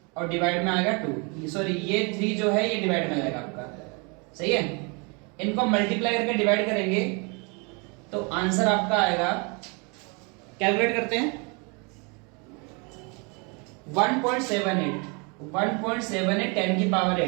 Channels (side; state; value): left; quieter; 32.0 dB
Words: और डिवाइड में आएगा 2। सॉरी ये 3 जो है ये डिवाइड में आएगा आपका, सही है। इनको मल्टीप्लाई करके डिवाइड करेंगे तो आंसर आपका आएगा, कैलकुलेट करते हैं 1.78 10 की पावर